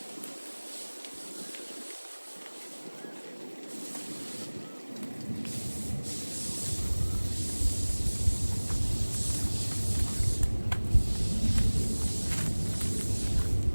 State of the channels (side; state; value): both; inverted; correlation -1.00